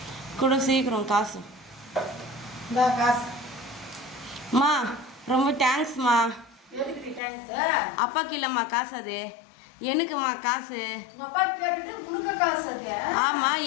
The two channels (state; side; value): drops out; right; at 7.2 s